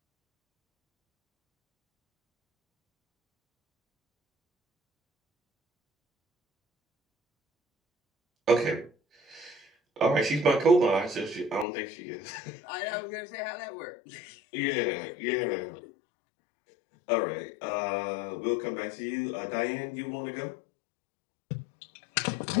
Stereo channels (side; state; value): right; drops out; at 11.7 s